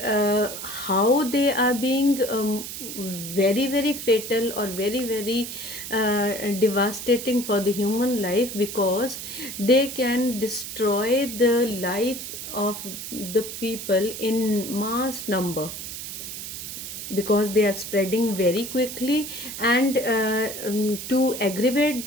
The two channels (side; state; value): right; noise; hiss, 8 dB below the sound